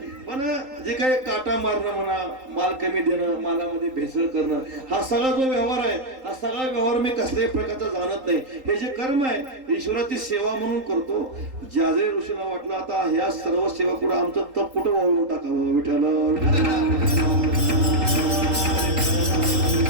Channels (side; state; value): left; late; 3.8 ms